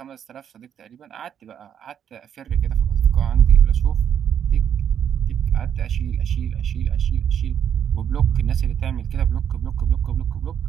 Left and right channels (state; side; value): quieter; left; 8.7 dB